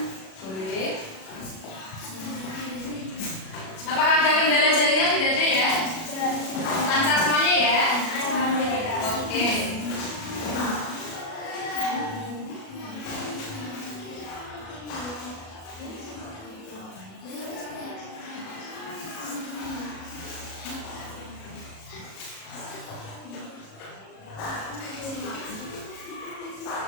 boleh. Apakah ada kendala jaringan? Tidak ada ya? Lancar semuanya ya? Oke.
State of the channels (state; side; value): late; right; 37 ms